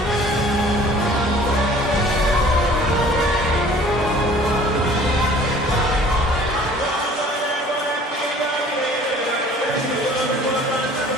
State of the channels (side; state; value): both; normal; correlation 0.50